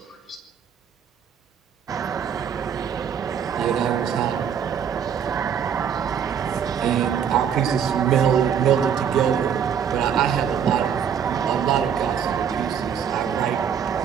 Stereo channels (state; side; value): quieter; left; 8.1 dB